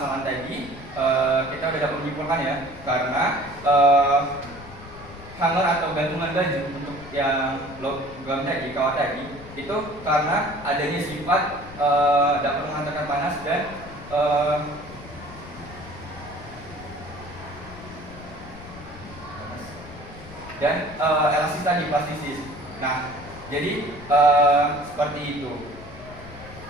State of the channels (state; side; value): noise; left; rumble, 16 dB below the sound